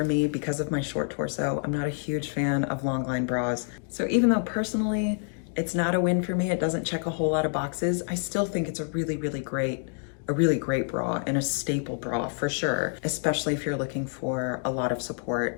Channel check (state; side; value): silent; right; 55 dB below the other